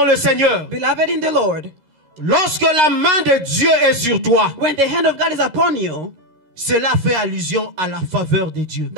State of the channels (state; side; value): late; left; 13 ms